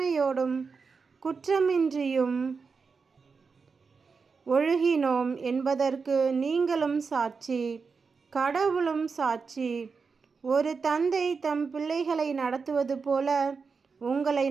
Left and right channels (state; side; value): quieter; left; 5.1 dB